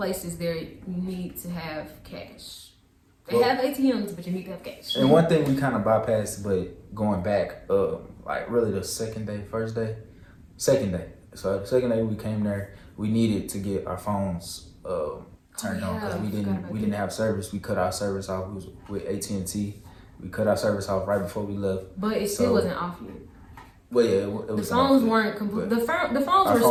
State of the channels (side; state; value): both; identical; correlation 1.00